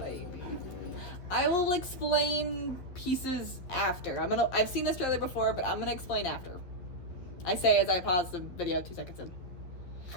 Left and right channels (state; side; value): late; right; 11 ms